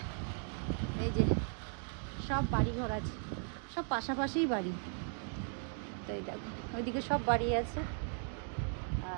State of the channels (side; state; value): left; silent; 53 dB below the other